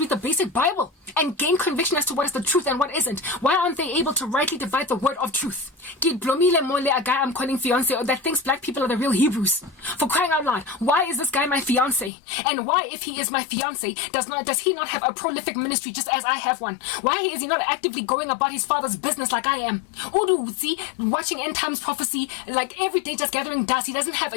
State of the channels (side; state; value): right; drops out; at 12.1 s